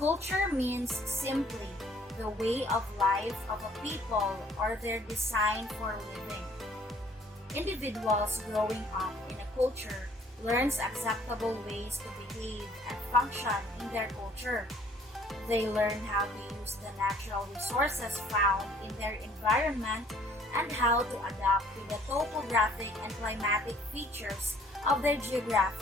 means simply the way of life of a people or their design for living. Individuals growing up in a culture learns acceptable ways to behave and function in their culture. They learn how to use the natural resources found in their environment and how to adapt to the topographic and climatic features of their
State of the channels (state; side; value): normal; both; correlation 0.58